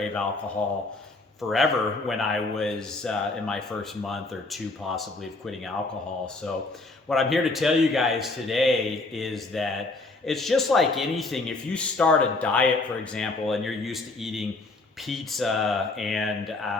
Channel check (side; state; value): right; quieter; 3.3 dB